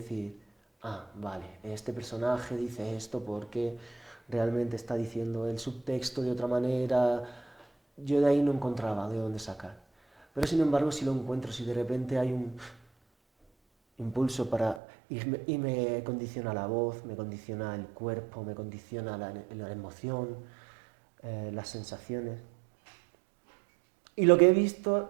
ah, vale, este personaje dice esto porque realmente está diciendo el subtexto de otra manera. Yo de ahí no encontraba de dónde sacar. Pero sin embargo, si lo encuentro, si de repente hay un impulso para... Y me condiciona la voz, me condiciona el cuerpo, me condiciona la emoción, las sensaciones. Y lo que he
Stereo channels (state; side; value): drops out; left; at 14.8 s